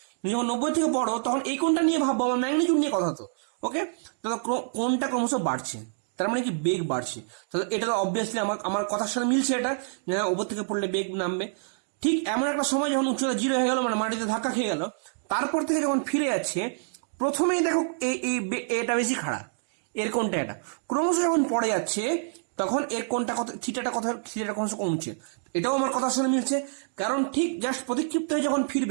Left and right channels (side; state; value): left; silent; digital silence